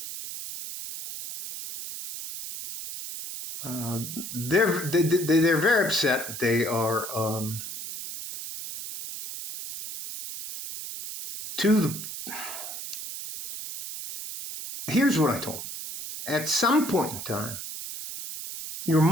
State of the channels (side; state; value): right; noise; hiss, 8 dB below the sound